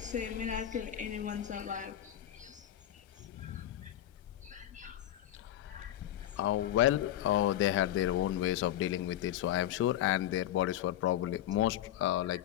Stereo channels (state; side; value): quieter; right; 12.3 dB